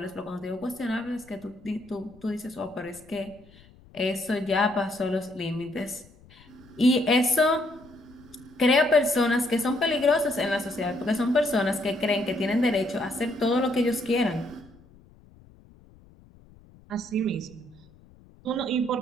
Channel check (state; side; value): noise; left; rumble, 25 dB below the sound